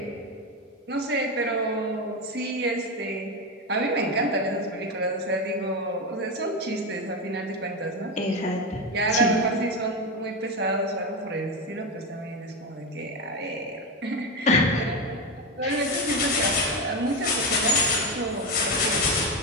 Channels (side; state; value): both; normal; correlation 0.13